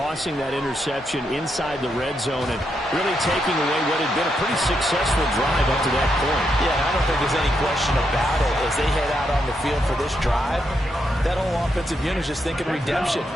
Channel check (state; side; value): normal; both; correlation 0.81